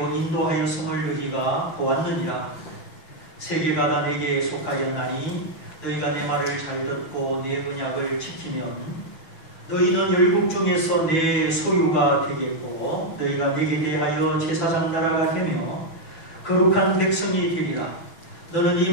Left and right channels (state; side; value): late; right; 6.1 ms